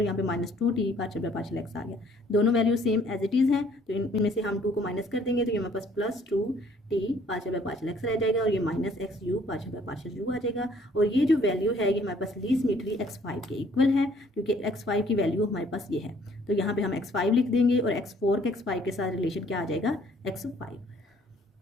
यहाँ पे minus 2t partial by partial x आ गया। दोनों value same as it is हैं, तो इनमें से हम 2 को माइनस कर देंगे तो ये हमारे पास plus 2t partial by partial x रह जाएगा और ये minus x u partial by partial u आ जाएगा। और ये जो वैल्यू है ये हमारे पास लीस्ट सिमेट्री x5 के इक्वल है, क्योंकि x5 की वैल्यू हमारे पास ये है, तो यहाँ पे हम x5 लिख देंगे और x4 के x5 के साथ रिलेशन क्या आ जाएगा, x5।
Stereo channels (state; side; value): normal; both; correlation 0.60